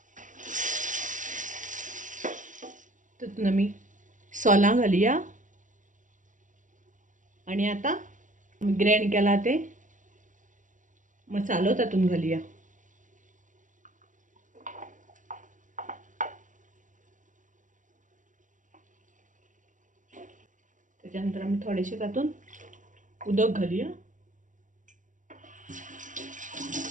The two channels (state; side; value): late; left; 0.37 ms